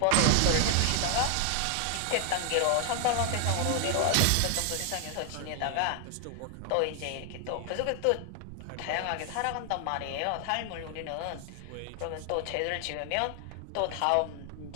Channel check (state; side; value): different; both; correlation 0.00